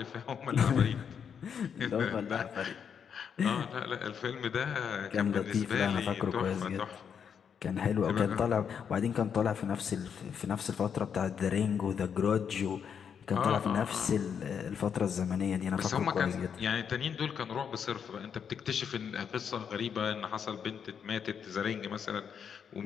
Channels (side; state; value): right; quieter; 7.4 dB